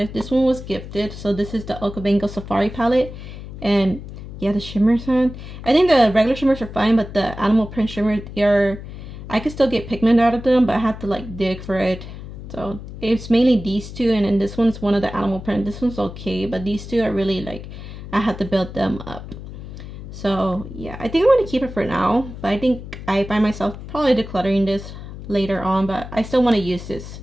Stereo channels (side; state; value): left; noise; hum, 12 dB below the sound